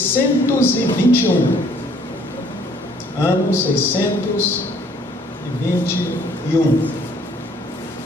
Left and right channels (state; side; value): normal; both; correlation 0.60